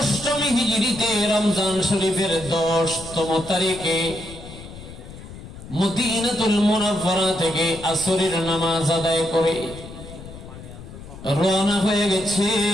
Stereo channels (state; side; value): noise; left; rumble, 15 dB below the sound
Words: হিজরিতে রমজান শরীফের 10তম তারিখে মদিনাতুল মুনাওয়ারা থেকে আসরের নামাজ আদায় করে রওনা হয়ে